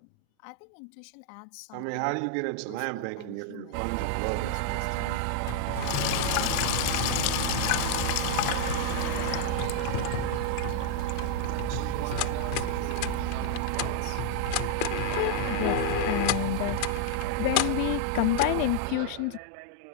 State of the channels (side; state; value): both; different; correlation 0.00